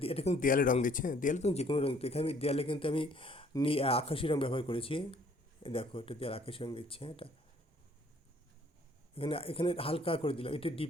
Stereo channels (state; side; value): normal; both; correlation 0.60